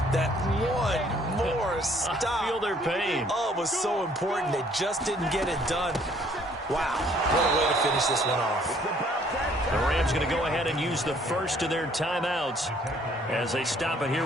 that one more stop. I feel their pain. Oh, it was so important. They just didn't get it done. Wow, what a way to finish this one off. The Rams going to go ahead and use the first of their timeouts as they stop it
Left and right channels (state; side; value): normal; both; correlation 0.61